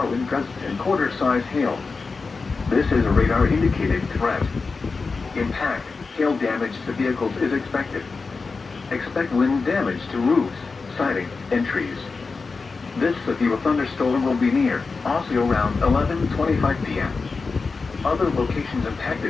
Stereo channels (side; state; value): right; quieter; 4.4 dB